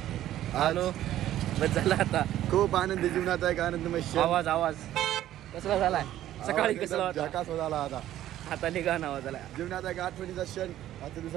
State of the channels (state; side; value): quieter; left; 12.9 dB